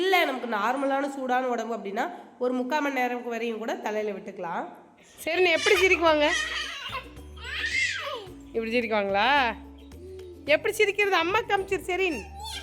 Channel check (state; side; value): identical; both; correlation 1.00